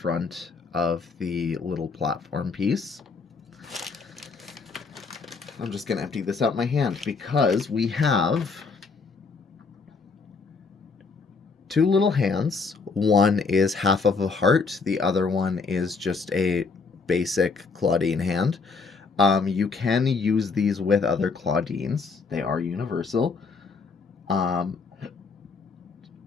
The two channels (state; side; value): quieter; right; 4.6 dB